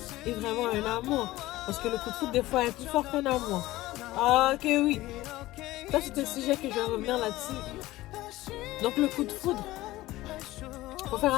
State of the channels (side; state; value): right; quieter; 17.4 dB